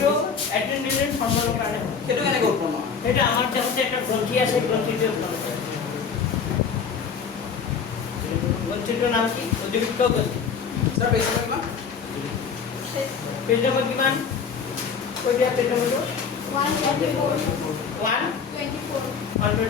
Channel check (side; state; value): right; quieter; 6.2 dB